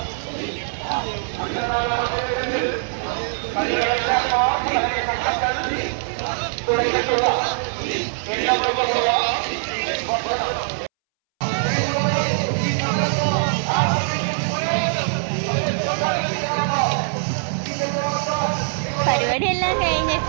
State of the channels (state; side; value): silent; left; 64 dB below the other